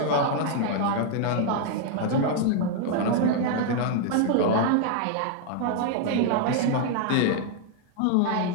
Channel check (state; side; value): different; both; correlation 0.00